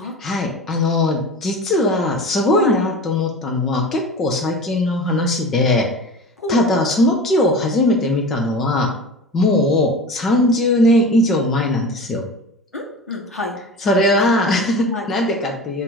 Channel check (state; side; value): normal; both; correlation 0.33